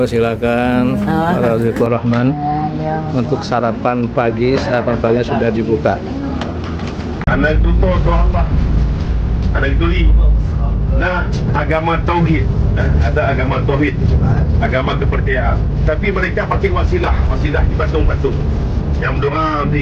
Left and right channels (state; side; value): identical; both; correlation 1.00